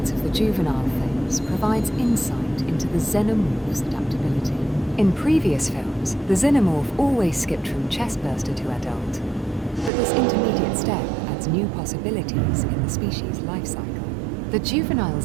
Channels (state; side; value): drops out; left; at 9.9 s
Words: of the juvenile phase provides insight into the xenomorph's adaptability. In previous films, the xenomorph always skipped from chestburster to adult, but this intermediate step adds new possibilities in the species' life cycle. The juvenile